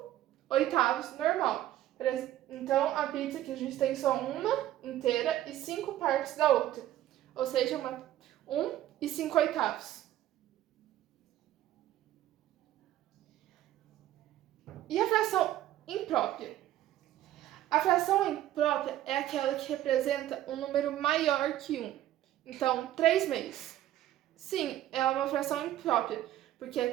normal. Então, a pizza que a gente tem só uma inteira e 5 partes da outra. Ou seja, 1 e 5/8. E a fração imprópria? A fração imprópria é aquela que representa um número maior que 1. Então, 3/2. Sim, é uma fração imprópria, porque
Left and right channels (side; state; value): left; quieter; 13.3 dB